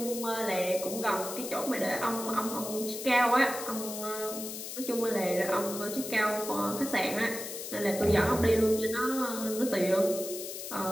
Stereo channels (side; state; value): left; noise; hiss, 8 dB below the sound